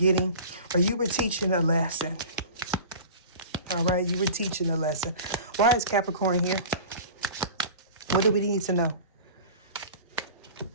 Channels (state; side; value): inverted; both; correlation -0.37